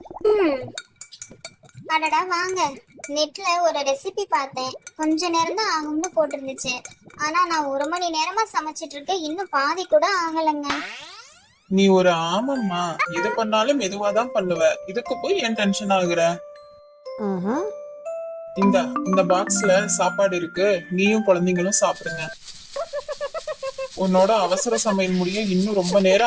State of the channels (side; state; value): both; identical; correlation 1.00